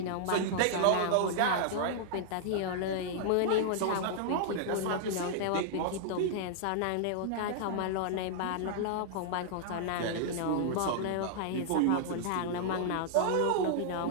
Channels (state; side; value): different; both; correlation -0.01